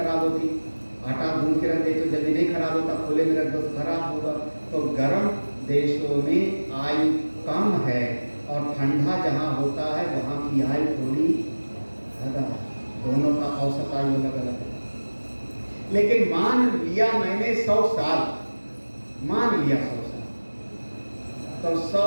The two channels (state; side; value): inverted; both; correlation -1.00